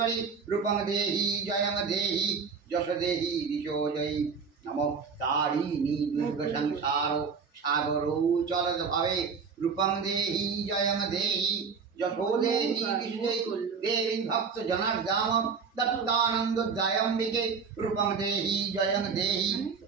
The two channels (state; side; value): quieter; left; 5.6 dB